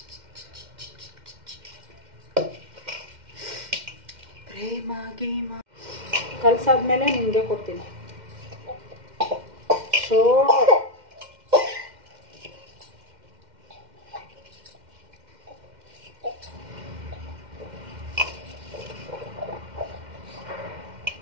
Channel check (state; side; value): late; left; 2.1 ms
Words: ಪ್ರೇಮ ಗೀಮ ಕಲ್ಸಾದ್ಮೇಲೆ ನಿಮಗೆ ಕೊಡ್ತೀನಿ. ಸೊ